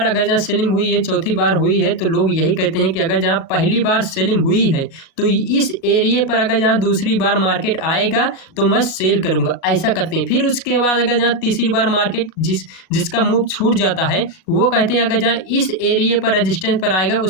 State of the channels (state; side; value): late; right; 36 ms